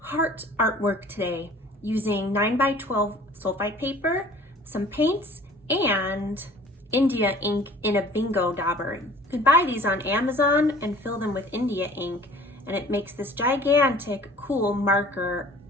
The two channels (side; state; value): both; normal; correlation 0.49